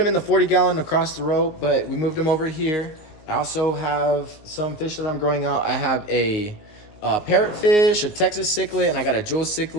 in the 40-gallon across the road, but we moved them over here. I also have some fish that I'm growing out. I have a parrotfish, a Texas cichlid, and I got a jewel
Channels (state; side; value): late; right; 19 ms